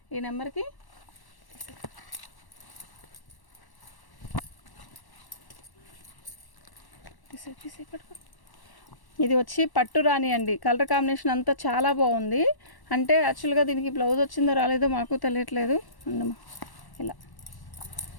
ఈ నెంబర్కి. ఇది వచ్చి పట్టు రాణి అండి. కలర్ కాంబినేషన్ అంతా చాలా బాగుంది. అంటే యాక్చువల్గా దీనికి బ్లౌజ్ వచ్చిందో రాలేదో మాకు తెలియట్లేదు. అందమ్మా ఇలా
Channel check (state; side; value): late; right; 1.1 ms